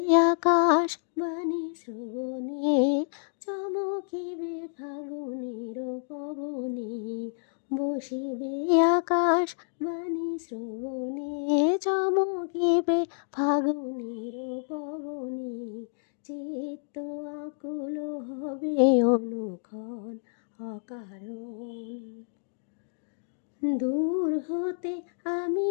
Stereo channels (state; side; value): silent; right; digital silence